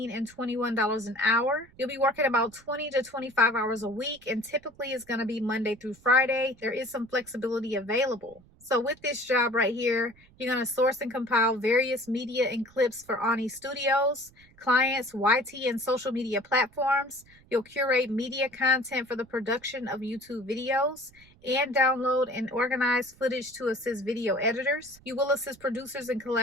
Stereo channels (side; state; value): right; noise; rumble, 27 dB below the sound